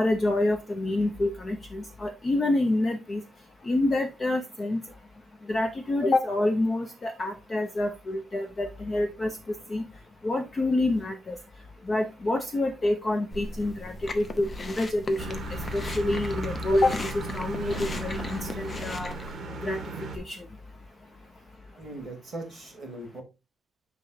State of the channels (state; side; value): normal; both; correlation 0.90